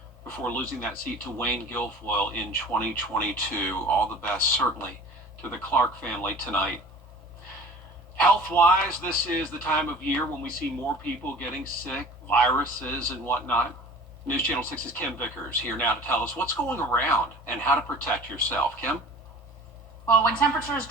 before losing that seat to Wayne Guilfoyle in 2022. All the best, certainly, to the Clark family tonight. Health-wise, this is the time of year when we see more people getting sick, viruses and whatnot. News Channel 6's Kim Vickers here now to tell us what's going around and how to protect yourself. Kim? Well, when temperatures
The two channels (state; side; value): normal; both; correlation 0.43